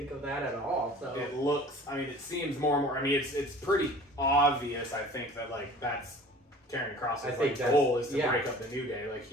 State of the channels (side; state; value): both; normal; correlation 0.45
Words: of that at all. So it looks. It seems more and more. It's pretty obvious. I think that that's Karrion Kross's I think goal is to yeah. break up the New Day. Like,